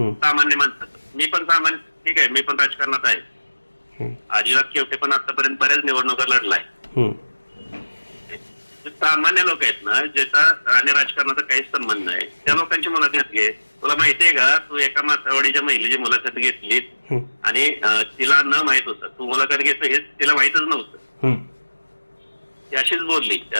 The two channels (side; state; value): both; inverted; correlation -1.00